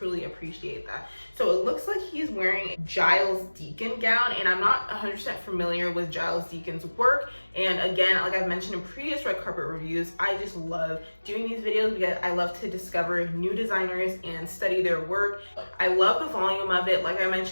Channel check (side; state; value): both; inverted; correlation -1.00